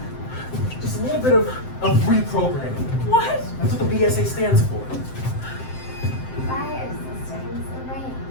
Just a little bit of reprogramming. What? That's what the BSA stands for. Fire systems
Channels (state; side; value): late; right; 7.7 ms